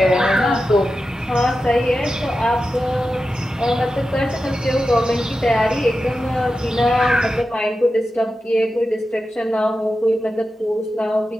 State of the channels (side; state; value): both; normal; correlation 0.92